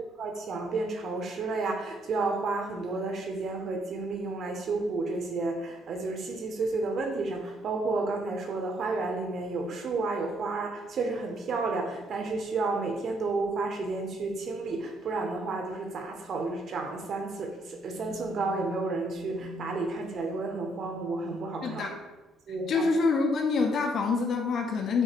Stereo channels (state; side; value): normal; both; correlation 0.69